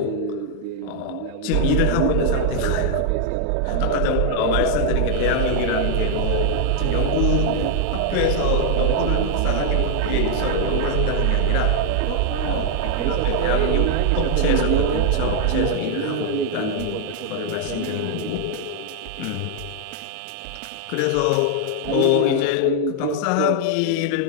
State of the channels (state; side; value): different; both; correlation 0.00